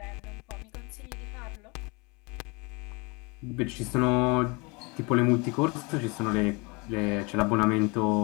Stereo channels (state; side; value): quieter; right; 28.6 dB